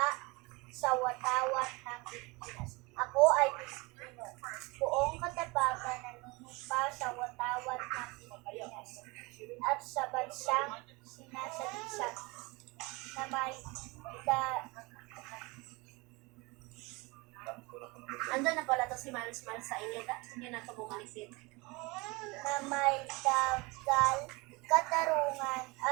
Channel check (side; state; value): left; quieter; 25.6 dB